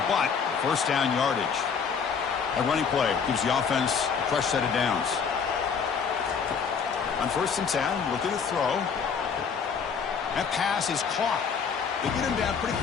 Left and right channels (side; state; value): right; quieter; 6.2 dB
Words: but first down yardage. A running play gives the offense a fresh set of downs. On first and 10, looking to throw. That pass is caught. They get him down pretty